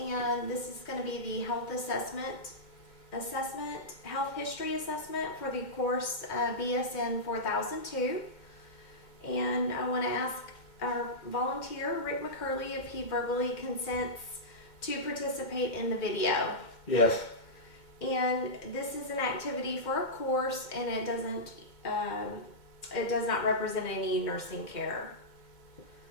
this is going to be the health health history assessment for the course BSN 4002. And I want to ask our volunteer, Rick McCurley, if he verbally consents to participate in the video. Yes. And this is an activity for a course, and it does not represent any nursing care.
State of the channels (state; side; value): late; right; 2.2 ms